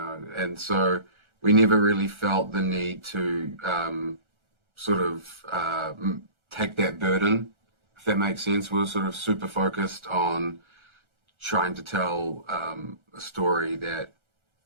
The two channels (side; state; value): left; late; 1.4 ms